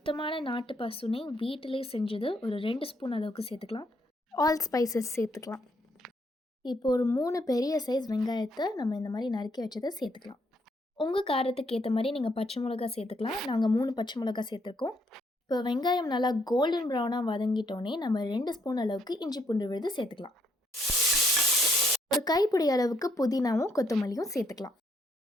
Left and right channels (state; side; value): normal; both; correlation 0.72